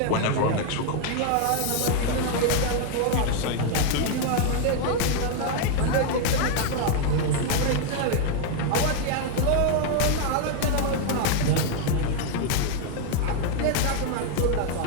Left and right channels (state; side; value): different; both; correlation 0.00